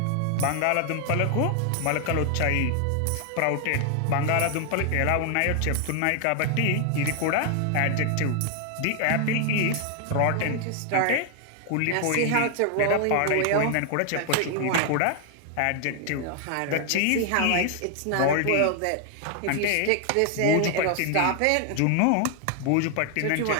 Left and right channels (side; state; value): both; different; correlation 0.00